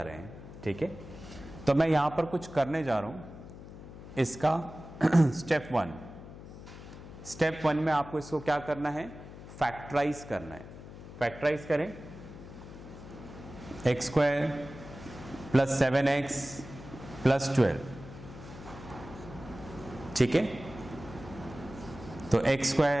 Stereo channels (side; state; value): left; noise; hum, 14 dB below the sound